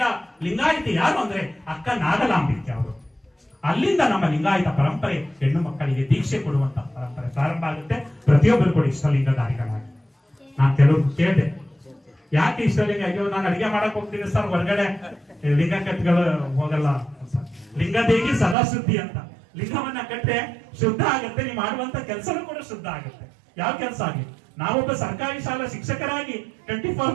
ಲಿಂಗಾಯತ ಯಾರು ಅಂದ್ರೆ ಅಕ್ಕ ನಾಗಲಾಂಬಿಕೆ ಅವರು. ಅಲ್ಲಿಂದ ನಮ್ಮ ಲಿಂಗಾಯತ ಪರಂಪರೆ ಹೆಣ್ಣು ಮಕ್ಕಳಿಗೆ ದೀಕ್ಷೆ ಕೊಡುವಂತ ಪರಂಪರೆ ಪ್ರಾರಂಭ ಆಗುತ್ತೆ. ಪ್ರತಿಯೊಬ್ಬರು ಕೂಡ ಇಷ್ಟಲಿಂಗಧಾರಿಗಳಾಗಿ. ನಾನು ಕೆಲವು ಕೇಳಿದೆ, ಯಾಕೆ ಇಷ್ಟಲಿಂಗ? ಅಯ್ಯೋ ನಾನು ಅಡಿಗೆ ಮಾಡಕ್ ಹೋಗ್ತೀನಿ ಸರ್, ಹೊರಗಡೆ ಲಿಂಗ ಕಟ್ಗಳು ಹೋಗಲ್ಲ. ಲಿಂಗದೇಗಿ ಸದಾ ಶುದ್ಧಿ ಅಂತ. ಲಿಂಗವನ್ನ ಕಟ್ಟೆ ಶುದ್ಧ ಆಗುತ್ತೆ, ನೀವು ಮಾಡುವಂತ ಕೆಲಸನೂ ಕೂಡ ಶುದ್ಧ ಆಗುತ್ತೆ. ಯಾವ ಕೆಲಸ ಆಗಲಿ. ನಾವೊಬ್ಬ ಸರ್ಕಾರಿ ಶಾಲಾ ಶಿಕ್ಷಕರಾಗಿ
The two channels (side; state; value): left; drops out; at 18.6 s